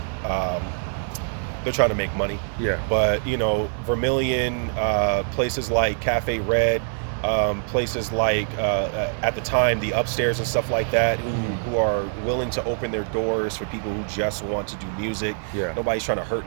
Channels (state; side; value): silent; left; digital silence